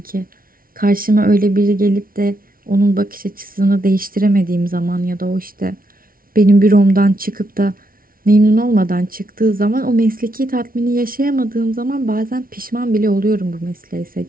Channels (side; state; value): left; late; 0.42 ms